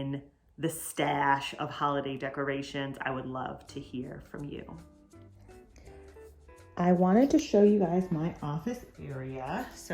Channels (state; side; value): identical; both; correlation 1.00